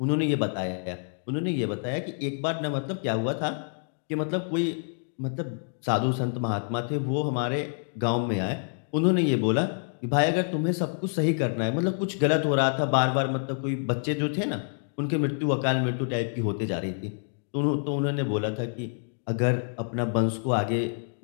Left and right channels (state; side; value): silent; right; digital silence